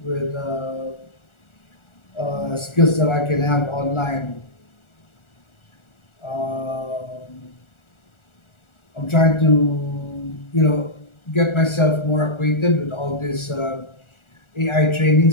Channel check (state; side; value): late; right; 1.4 ms